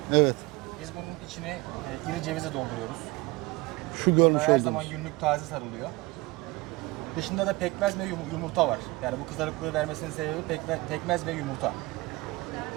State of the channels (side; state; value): left; quieter; 22.4 dB